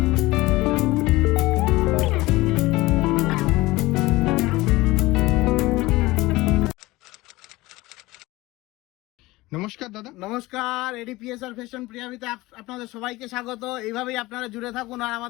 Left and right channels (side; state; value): right; quieter; 19.8 dB